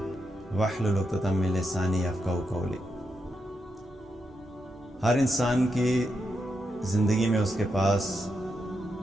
واحلل عقدۃ من لسانی یفقہوا قولی۔ ہر انسان کی زندگی میں اس کے پاس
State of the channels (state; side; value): normal; both; correlation 0.84